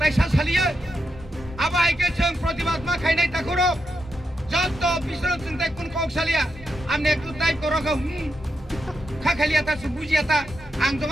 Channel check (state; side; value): normal; both; correlation 0.85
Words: সালিয়া আবাইকে जों প্রতিবাদ মা খাইনাই তাকরো যত বিশ্বর চিন্তা কোন কক সালিয়া আপনি একটু তাই করো গো খাখালিয়া তা বুঝিয়া তা आं